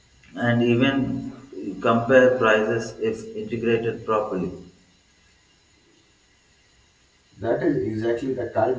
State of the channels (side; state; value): both; identical; correlation 1.00